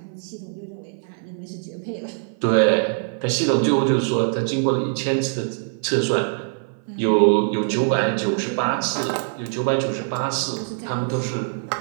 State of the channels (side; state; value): left; silent; 56 dB below the other